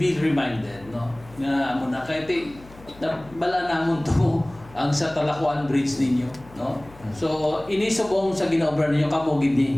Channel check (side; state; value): left; noise; hum, 21 dB below the sound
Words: reminded, no? Nga amo na kahit bala namon to ang sa Talakuan Bridge ninyo, no? So inisubong sa ginaobra ninyo kamo gid